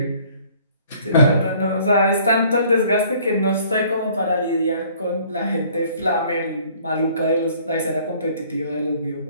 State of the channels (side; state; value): both; inverted; correlation -0.56